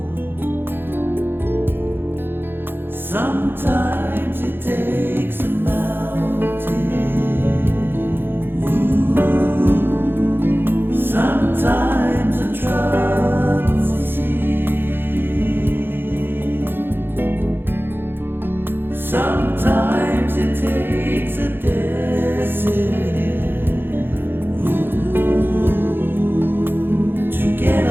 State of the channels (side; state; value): left; late; 0.10 ms